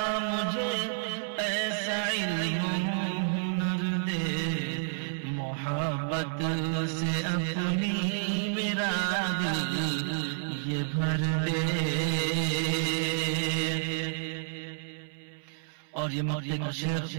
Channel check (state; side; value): silent; left; 58 dB below the other